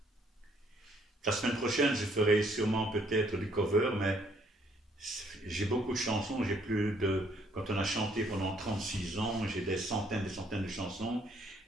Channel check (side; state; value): both; normal; correlation 0.66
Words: La semaine prochaine, je ferai sûrement peut-être du cover, mais j'ai beaucoup de chansons, j'ai plus de... Quand on a chanté pendant 36 ans, j'ai des centaines de chansons,